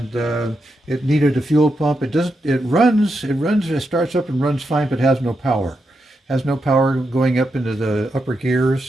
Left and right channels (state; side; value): normal; both; correlation 0.85